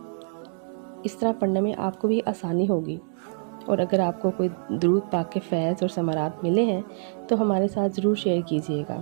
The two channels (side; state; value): left; silent; 61 dB below the other